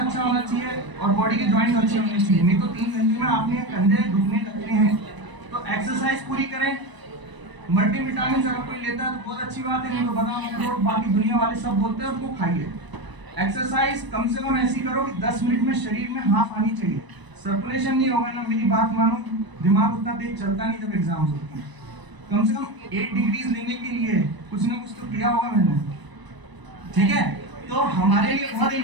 होना चाहिए और बॉडी के जॉइंट्स अच्छे होने चाहिए, नहीं तो 3 घंटे में आपने कंधे दुखने लगते हैं। तो एक्सरसाइज पूरी करें। मल्टीविटामिन अगर कोई लेता है तो बहुत अच्छी बात है, नहीं तो बादाम अखरोट बाकी दुनिया वाले सब बोलते हैं उनको खाइए। एक्सरसाइज कम से कम ऐसी करो कि 10 मिनट में शरीर में हाफ आनी चाहिए। सर्कुलेशन नहीं होगा ना, मेरी बात मानो, दिमाग उतना तेज चलता नहीं जब एग्जाम्स होते हैं। कम से कम 8 डिग्रीज लेने के लिए कुछ ना कुछ तो किया होगा मैंने, ठीक है। तो हमारे लिए बहुत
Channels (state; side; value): late; left; 1.0 ms